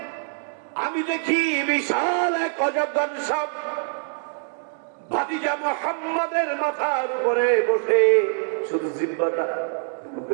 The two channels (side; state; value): left; silent; 60 dB below the other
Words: আমি দেখি বিশাল এক অজগর সাপ ভাতিজা মুহাম্মাদের মাথার উপরে বসে শুধু জিহ্বাটা